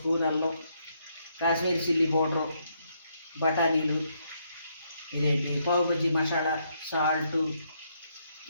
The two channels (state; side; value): inverted; both; correlation -0.75